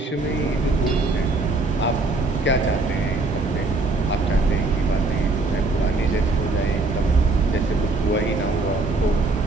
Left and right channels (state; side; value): quieter; left; 3.3 dB